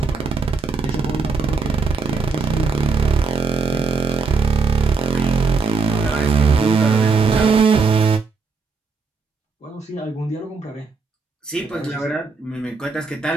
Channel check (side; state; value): left; quieter; 4.7 dB